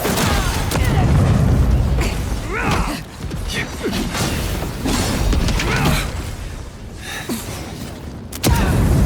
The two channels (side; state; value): both; identical; correlation 1.00